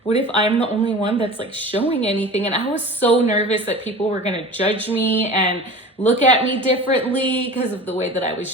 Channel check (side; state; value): both; normal; correlation 0.37